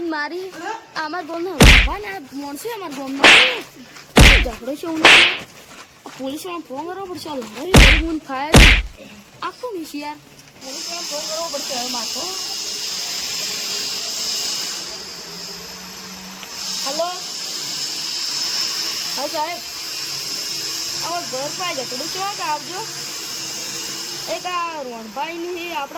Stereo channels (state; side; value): identical; both; correlation 1.00